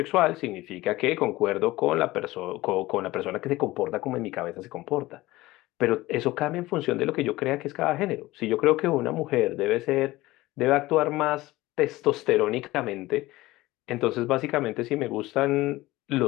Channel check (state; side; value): quieter; right; 18.6 dB